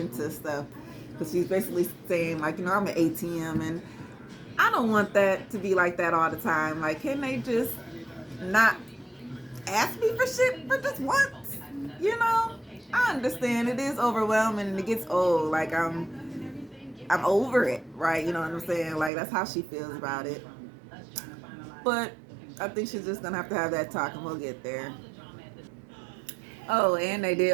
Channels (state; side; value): drops out; left; at 19.1 s